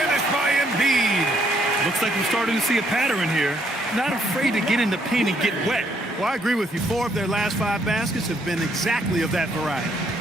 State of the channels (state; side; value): normal; both; correlation 0.70